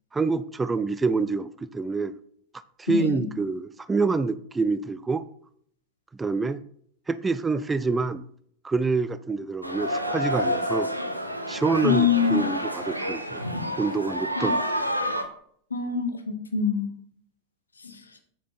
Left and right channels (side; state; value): both; normal; correlation 0.31